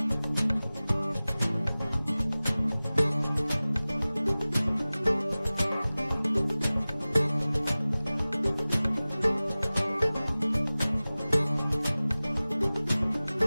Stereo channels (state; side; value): inverted; both; correlation -0.98